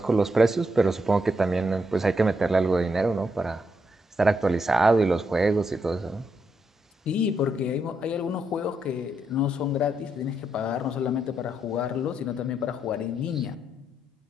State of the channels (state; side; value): normal; both; correlation 0.79